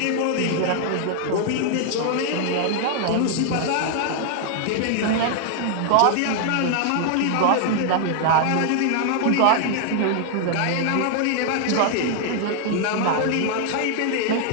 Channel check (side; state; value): both; different; correlation 0.00